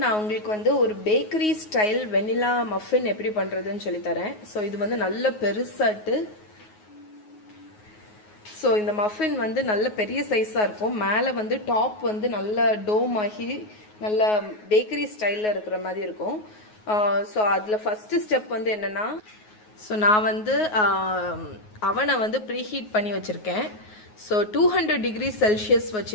நான் உங்களுக்கு வந்து ஒரு பேக்கரி ஸ்டைல் வெனிலா மஃபின் எப்படி பண்ணுறதுன்னு சொல்லித்தரேன். ஸோ இது வந்து நல்ல பெருசாட்டு. ஸோ இந்த மஃபின் வந்து நல்ல பெரிய சைஸாக இருக்கும். மேலே வந்து டாப் வந்து நல்ல டோம் ஆகி நல்ல பேக்கரி ஸ்டைலில் இருக்கிற மாதிரி இருக்கும். ஸோ அதில் ஃபஸ்ட்டு ஸ்டெப் வந்து என்னென்னா, ஸோ நான் வந்து அவனை வந்து ப்ரீஹீட் பண்ணி வச்சுருக்கேன். ஸோ 200 டிகிரி செல்சியஸ்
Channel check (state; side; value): late; right; 9.4 ms